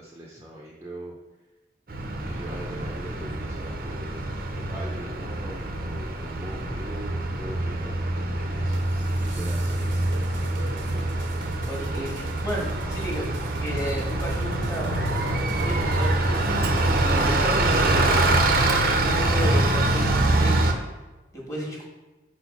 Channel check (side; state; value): both; normal; correlation 0.57